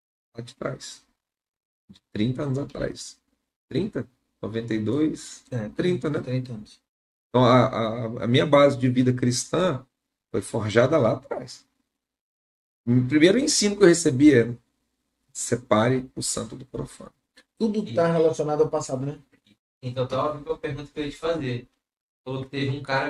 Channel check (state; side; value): identical; both; correlation 1.00